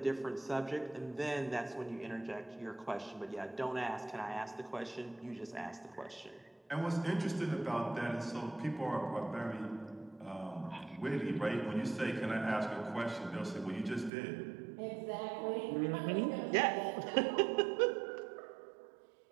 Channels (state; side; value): drops out; left; at 14.1 s